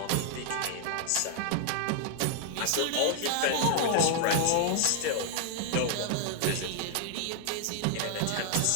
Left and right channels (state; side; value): different; both; correlation 0.00